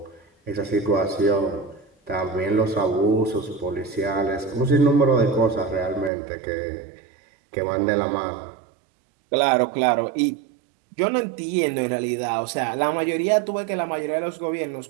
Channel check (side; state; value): left; drops out; at 6.1 s